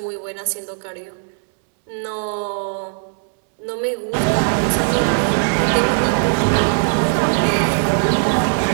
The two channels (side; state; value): left; silent; 66 dB below the other